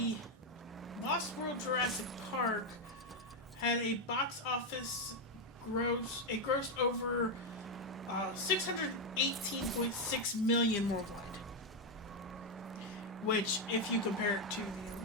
Lost World Jurassic Park had a box office grossed over $618.6 million worldwide. Which, if you compare it to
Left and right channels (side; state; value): both; normal; correlation 0.04